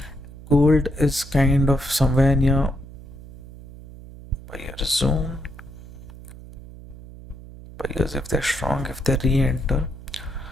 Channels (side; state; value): right; noise; hum, 17 dB below the sound